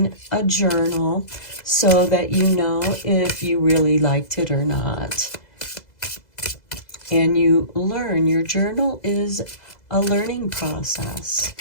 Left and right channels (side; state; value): right; late; 2.0 ms